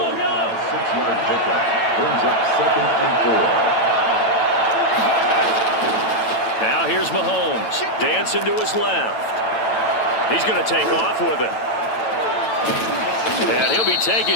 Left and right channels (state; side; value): late; right; 9.0 ms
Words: pickup brings up 2nd and 4. Now here's Mahomes. Dancing to his left. He's going to take off with it. And he'll be